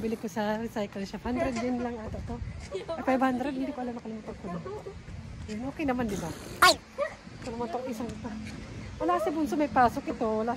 ko sa recycle shop. 100 din lang ata to. 500, hindi ko alam, nakalimutan ko na. Okay naman, di ba? Ay! Ito naman itong isang ito. Wala si Bunso may pasok ito. Wala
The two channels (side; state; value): both; identical; correlation 1.00